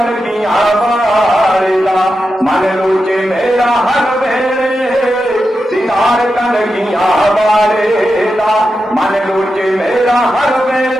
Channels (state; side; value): normal; both; correlation 0.89